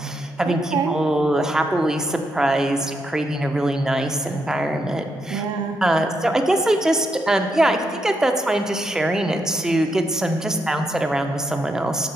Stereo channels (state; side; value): normal; both; correlation 0.80